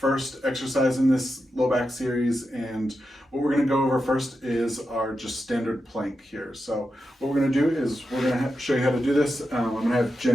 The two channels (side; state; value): both; normal; correlation 0.88